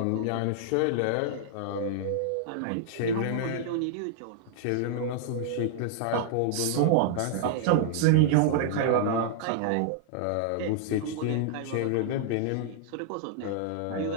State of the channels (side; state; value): both; different; correlation -0.01